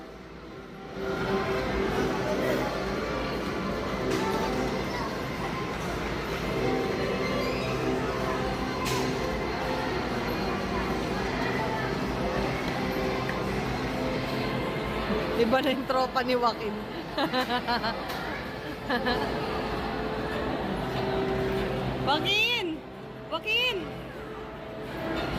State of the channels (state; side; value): identical; both; correlation 1.00